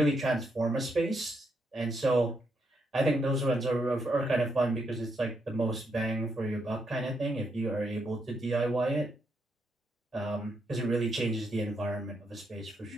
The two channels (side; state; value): both; normal; correlation 0.79